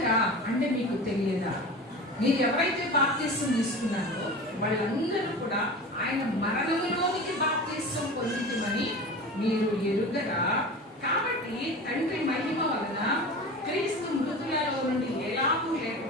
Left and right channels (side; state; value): both; normal; correlation 0.33